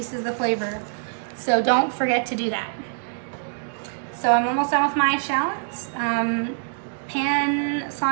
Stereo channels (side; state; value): left; silent; digital silence